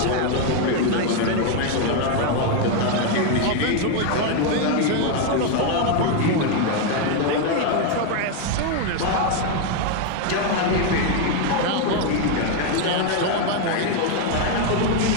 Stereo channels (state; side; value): different; both; correlation 0.01